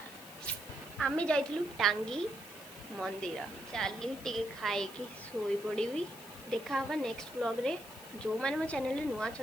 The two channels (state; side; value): noise; left; hiss, 17 dB below the sound